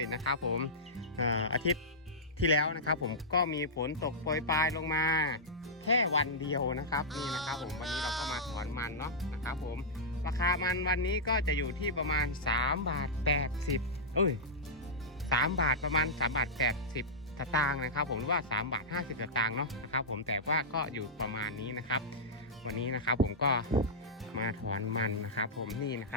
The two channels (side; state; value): both; normal; correlation -0.11